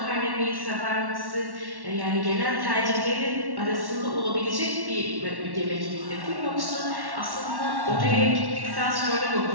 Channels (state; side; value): late; left; 1.1 ms